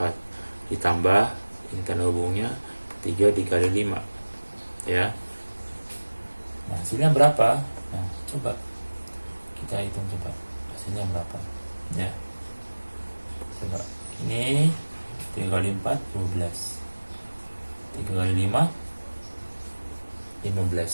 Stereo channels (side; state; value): both; inverted; correlation -1.00